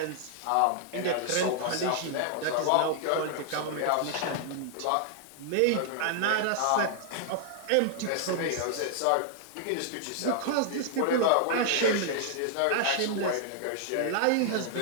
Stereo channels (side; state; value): both; different; correlation -0.01